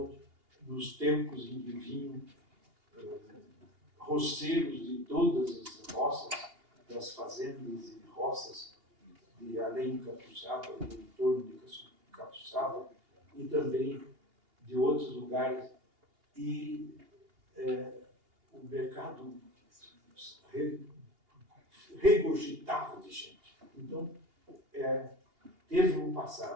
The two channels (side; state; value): left; late; 2.8 ms